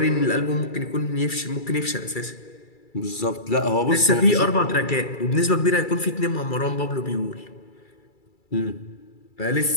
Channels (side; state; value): right; late; 2.3 ms